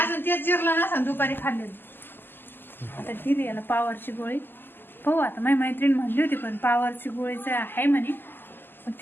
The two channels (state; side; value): late; right; 0.095 ms